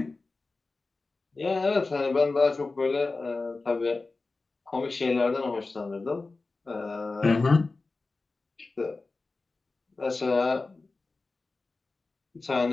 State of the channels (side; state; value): right; quieter; 3.6 dB